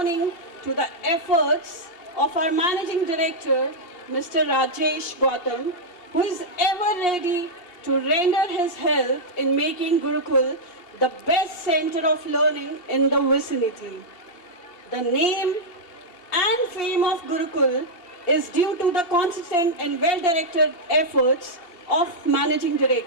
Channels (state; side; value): late; right; 2.8 ms